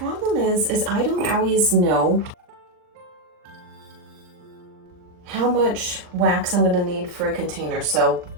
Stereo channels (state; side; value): late; left; 39 ms